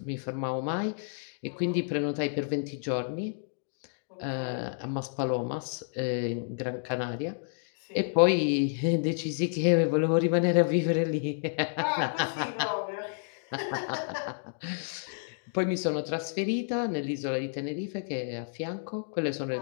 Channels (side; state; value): right; silent; digital silence